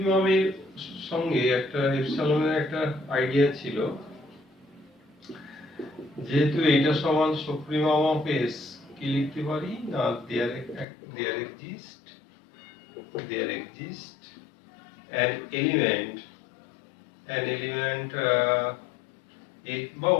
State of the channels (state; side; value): drops out; right; at 10.9 s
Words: সঙ্গে একটা এপসাইলনের একটা আইডিয়া ছিল, যেহেতু এটা সমান সুপ্রিমম অফ এস, কি লিখতে পারি না there exist an element x বা